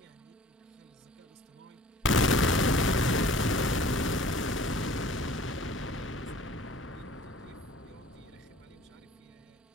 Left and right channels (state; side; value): normal; both; correlation 0.48